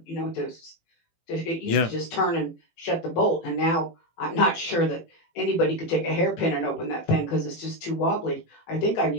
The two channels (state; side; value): late; right; 18 ms